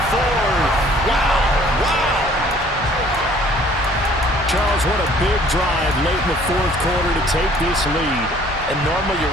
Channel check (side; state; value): both; normal; correlation 0.56